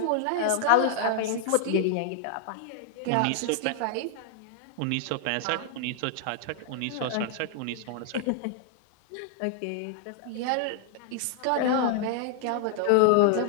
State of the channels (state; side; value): different; both; correlation -0.01